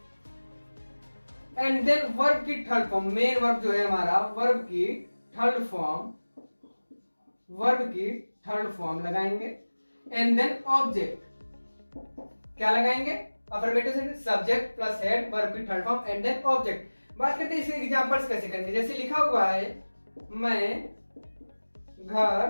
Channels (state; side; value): inverted; both; correlation -1.00